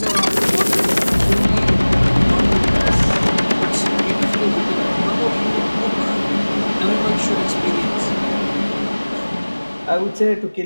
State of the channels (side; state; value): both; inverted; correlation -1.00